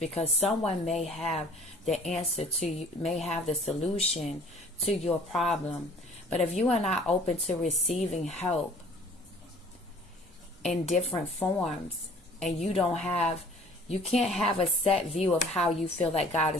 someone may have the answer to you, may have the solution to your problem. But if you are not open to receiving help, in different forms, and you can't have a set view of how you feel that God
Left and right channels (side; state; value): both; normal; correlation 0.50